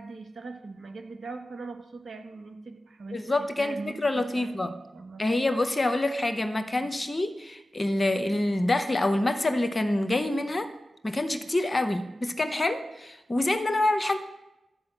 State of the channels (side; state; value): both; normal; correlation 0.95